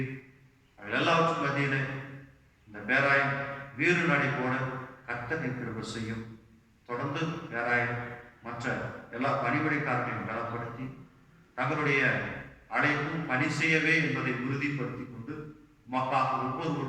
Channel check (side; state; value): both; identical; correlation 1.00